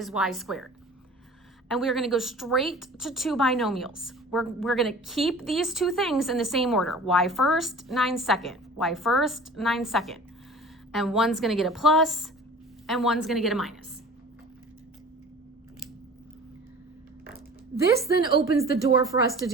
y squared. And we're going to go straight to two binomials. We're going to keep these two things in the same order. Y first, 9 second. Y first, 9 second. And one's going to get a plus, and one's going to get a minus. This then opens the door for us to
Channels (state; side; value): normal; both; correlation 0.43